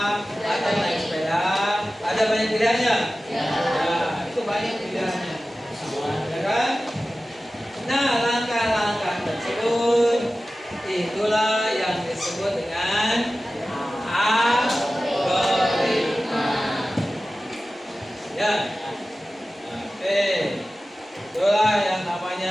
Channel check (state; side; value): normal; both; correlation 0.95